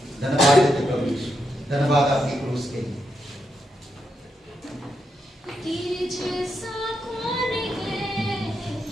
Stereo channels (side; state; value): both; normal; correlation 0.83